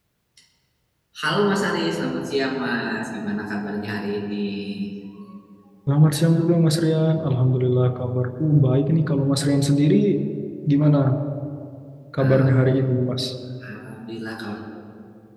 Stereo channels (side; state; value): both; identical; correlation 1.00